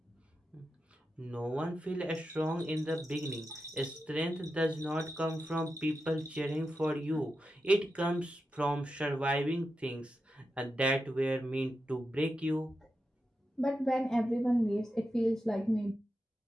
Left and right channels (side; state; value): both; normal; correlation 0.89